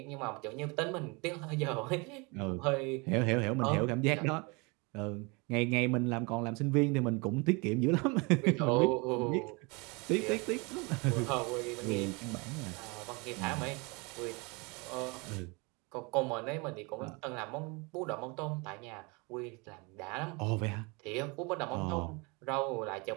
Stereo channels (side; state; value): left; quieter; 28.6 dB